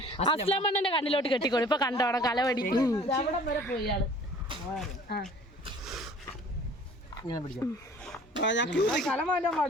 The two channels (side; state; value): both; normal; correlation 0.50